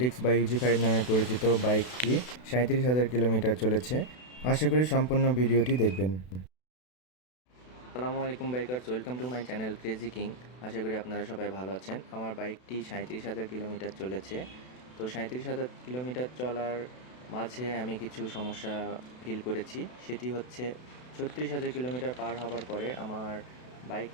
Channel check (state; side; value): late; right; 32 ms